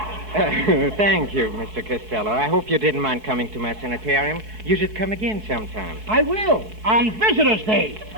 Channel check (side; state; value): left; late; 4.6 ms